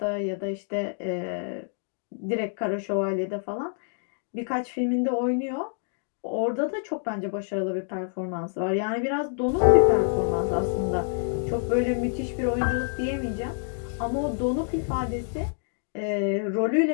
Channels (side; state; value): right; silent; 60 dB below the other